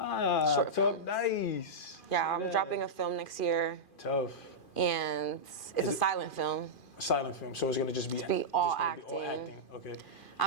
films. Nice. Yeah, I'm dropping a film next year. Tough. And it's a silent film. A silent film, so it's gonna just be all acting. Okay.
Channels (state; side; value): late; right; 2.4 ms